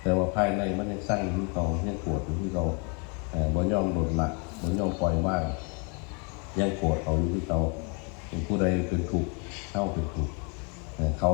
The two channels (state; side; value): quieter; right; 35.7 dB